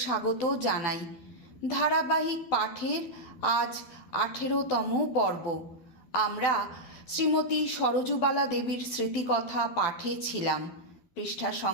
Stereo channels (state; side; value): late; right; 12 ms